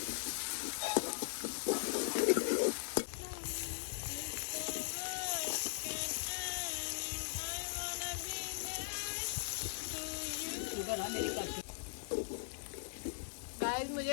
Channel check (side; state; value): right; silent; digital silence